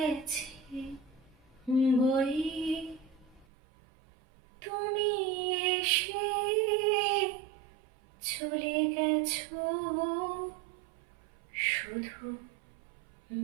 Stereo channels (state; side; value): drops out; left; at 3.5 s